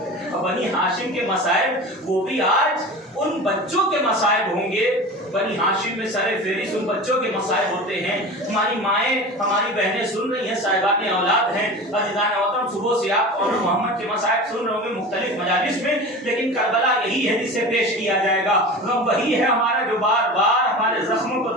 اور بنی ہاشم کے مصائب وہ بھی آج ان بچوں کے مصائب ہوں گے۔ بنی ہاشم میں سر فہرست ان بچوں کے مصائب ہوتے ہیں۔ ہماری مائیں، ہماری بہنیں سن رہی ہیں، صاحبان اولاد ہیں۔ عزیزان محترم، صبح سے آپ اور محمد کے مصائب سن رہے ہوں گے مختلف مجالس میں، لیکن کربلا یہی ہے جسے پیش کیا جائے گا۔ غم وہی ہے ہمارا جو بار بار ہمارے زخموں کو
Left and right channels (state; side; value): normal; both; correlation 0.33